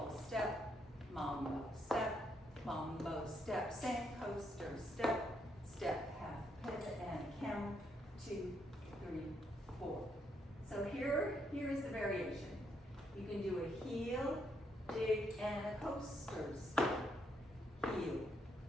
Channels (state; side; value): normal; both; correlation 0.76